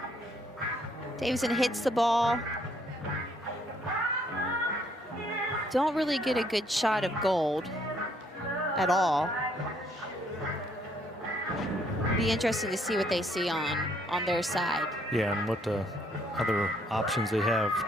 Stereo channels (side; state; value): both; normal; correlation 0.67